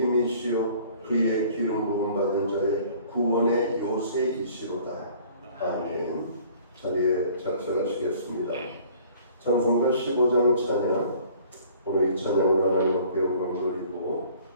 그의 기름 부음 받은 자의 구원의 요새이시로다. 아멘. 자리에 작성하시겠습니다. 찬송가 15장 찬양. 오늘 이 찬양으로 하나님 앞에 영광 돌리고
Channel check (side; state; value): both; inverted; correlation -0.53